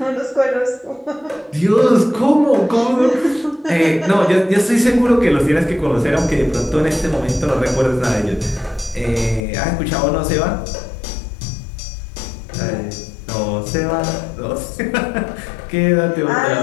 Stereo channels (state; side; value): drops out; right; at 9.4 s